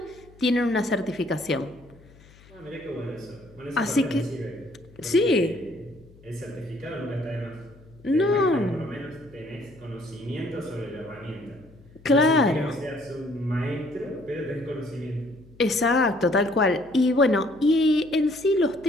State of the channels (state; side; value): noise; left; hum, 25 dB below the sound